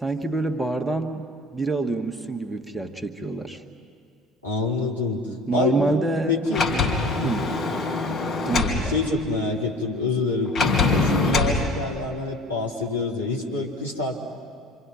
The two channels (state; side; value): normal; both; correlation 0.43